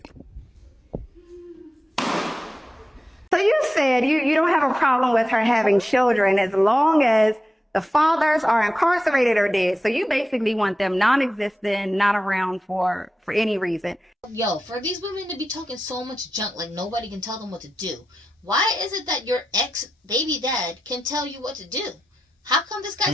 So you said you don't have a problem with her having children as long as the fathers are incarcerated or dead. So you basically want them non-existent, not around for any reason. Yo, for these women to be talking so much junk like nobody can tell them what to do, why is it that your ex-baby dad can tell you what to do? How come this guy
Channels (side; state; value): both; normal; correlation 0.90